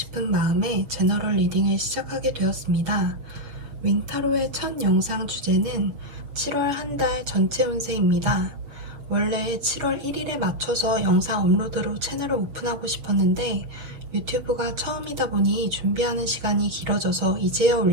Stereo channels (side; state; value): left; late; 6.9 ms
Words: 마음에 제너럴 리딩을 시작하게 되었습니다. 윙타로의 첫 영상 주제는 7월 한 달 전체 운세입니다. 원래 7월 1일에 맞춰서 영상 업로드로 채널을 오픈하고 싶었는데 유튜브가 처음이다 보니 준비하는 시간이 길어져서 이제야